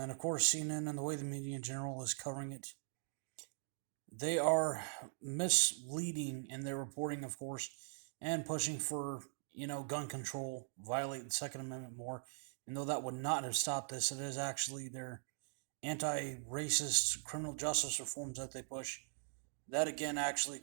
of course CNN and the way the media in general is covering it, they are misleading in their reporting, of course, and pushing for gun control, violate the Second Amendment more. And though that would not have stopped this, it is actually their anti-racist criminal justice reforms that they push that again actually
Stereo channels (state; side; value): silent; left; digital silence